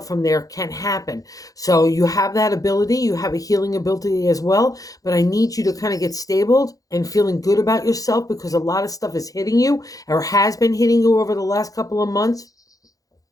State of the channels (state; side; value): late; right; 0.17 ms